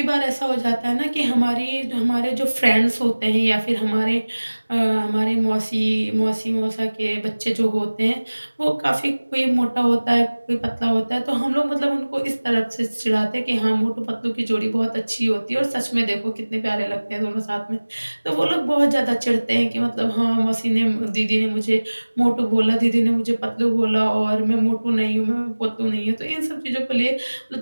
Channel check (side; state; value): both; inverted; correlation -1.00